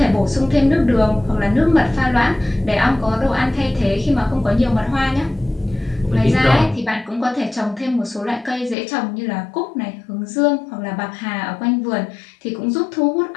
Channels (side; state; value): right; drops out; at 8.8 s